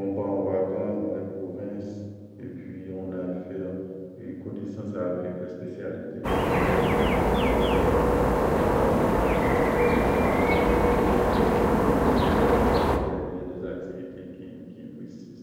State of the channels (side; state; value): both; identical; correlation 1.00